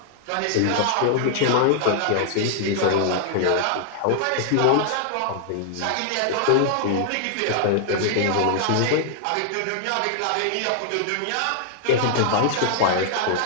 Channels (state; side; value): different; both; correlation -0.01